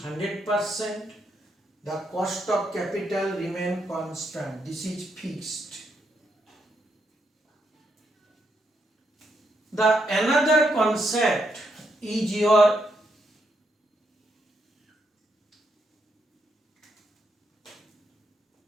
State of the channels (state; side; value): normal; both; correlation 0.78